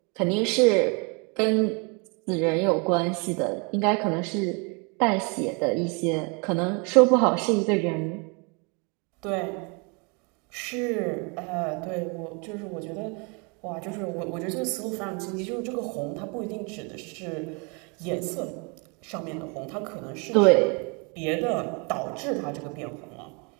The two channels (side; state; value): left; quieter; 32.6 dB